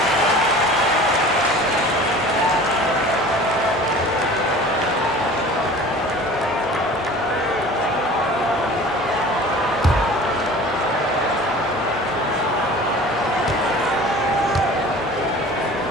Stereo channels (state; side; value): normal; both; correlation 0.42